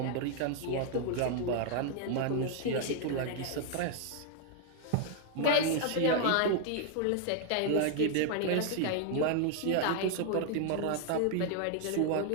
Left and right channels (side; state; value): both; different; correlation 0.00